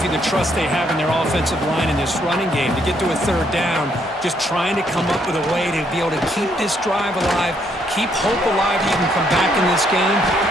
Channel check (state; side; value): normal; both; correlation 0.72